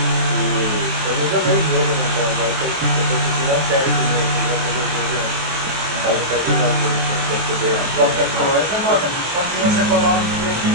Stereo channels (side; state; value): left; late; 23 ms